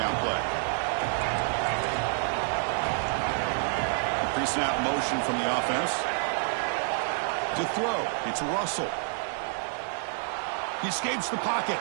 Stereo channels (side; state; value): left; silent; 56 dB below the other